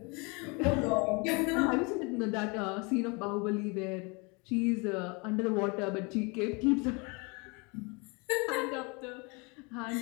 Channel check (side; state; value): right; quieter; 29.8 dB